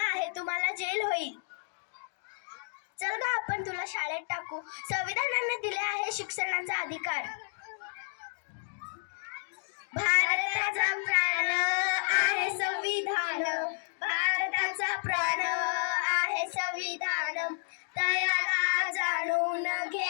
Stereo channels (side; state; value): right; silent; digital silence